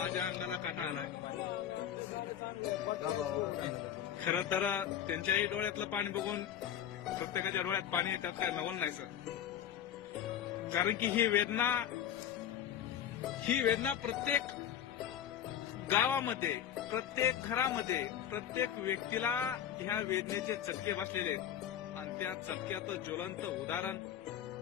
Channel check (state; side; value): quieter; right; 10.0 dB